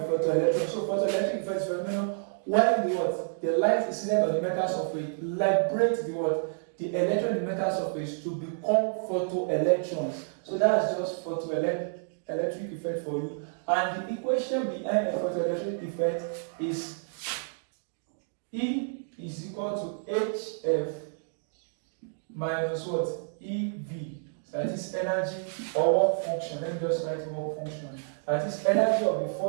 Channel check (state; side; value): silent; left; digital silence